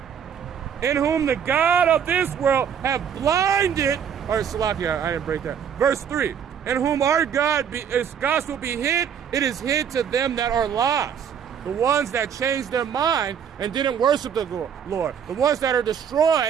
In whom the God of this world have blinded, or Salakia, I didn't break that. Verse 3, in whom our His gospel be hid, it is hid to them that are lost. The ones that changed their mind and didn't worship the Lord. The ones that are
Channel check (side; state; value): left; quieter; 8.0 dB